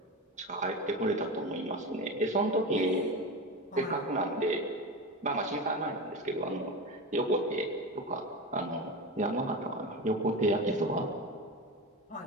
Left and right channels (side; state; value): both; normal; correlation 0.23